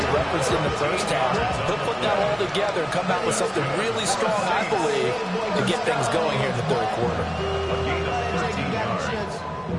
referenced in the first half? He'll put that all together and come out with something really strong, I believe, to get things going here in the third quarter. A gain of 13 yards.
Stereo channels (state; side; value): identical; both; correlation 1.00